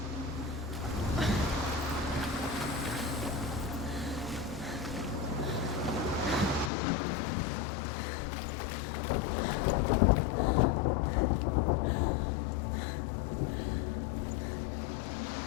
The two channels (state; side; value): drops out; right; at 6.7 s